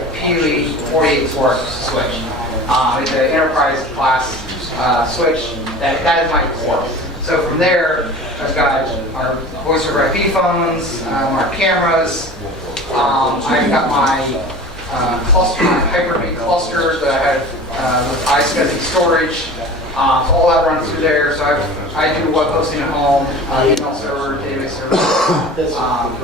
48 port switch. It's an enterprise class switch. That is my core. So from there, I've got our voice over IP phones, our cameras. I've got my cluster, my Hyper-V cluster that I have with iSCSI storage. So all that runs through there. So I do web hosting at home, email server, database server, this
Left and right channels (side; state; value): both; normal; correlation 0.38